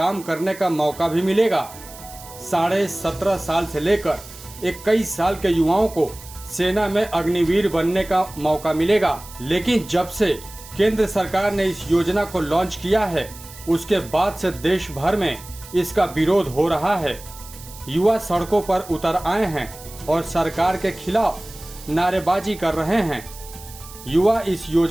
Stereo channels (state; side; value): noise; right; hiss, 17 dB below the sound